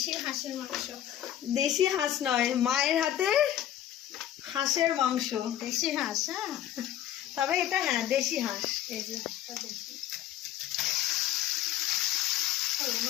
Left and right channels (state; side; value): quieter; right; 11.7 dB